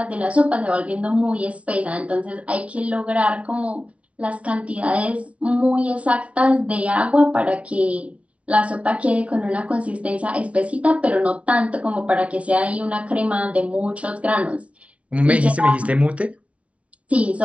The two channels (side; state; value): left; late; 0.063 ms